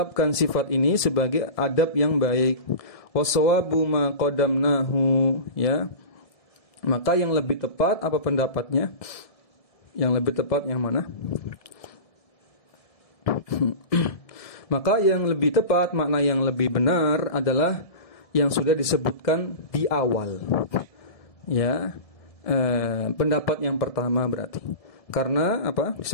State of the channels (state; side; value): late; right; 1.7 ms